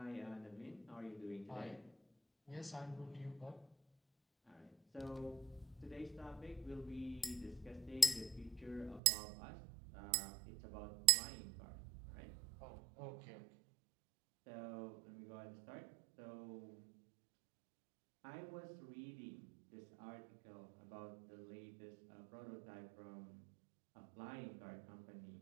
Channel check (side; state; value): left; drops out; at 9.0 s